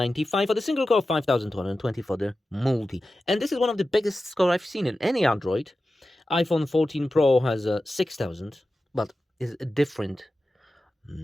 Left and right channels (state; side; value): normal; both; correlation 0.93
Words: for the single core, 5220 for the multi. And this is one of the biggest score I've seen in any Android. iPhone 14 Pro has a 6000, but is a different